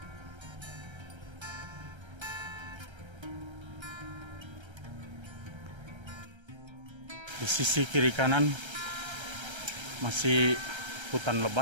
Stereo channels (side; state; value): left; late; 1.3 ms